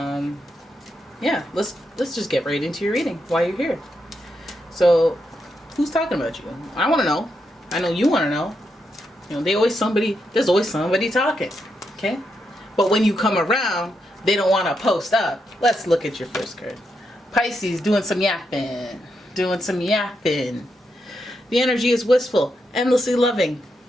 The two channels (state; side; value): normal; both; correlation 0.83